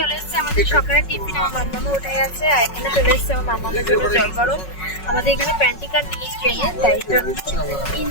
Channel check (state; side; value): late; right; 5.4 ms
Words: এসছে আমাদের সকালের টিফিন, আমার মাম্মা উঠে গেছে, আর এখানে চলে এসছে আমার মাম্মামের জন্য জল গরম। আমাদের এখানে প্যান্টিকার নেই ট্রেনে, তাই জন্য